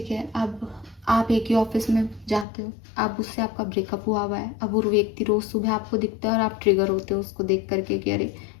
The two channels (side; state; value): right; drops out; at 2.5 s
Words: है, अब आप एक ही ऑफिस में जाते हो, अब उससे आपका ब्रेकअप हुआ है, अब वो व्यक्ति रोज़ सुबह आपको दिखता है और आप ट्रिगर होते हो उसको देख करके कि अरे